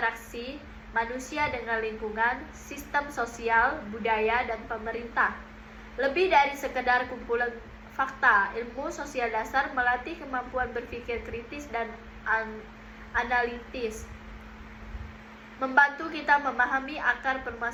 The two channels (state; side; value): identical; both; correlation 1.00